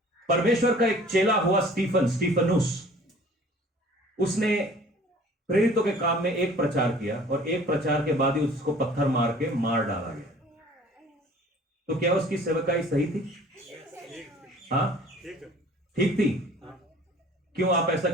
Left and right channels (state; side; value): normal; both; correlation 0.50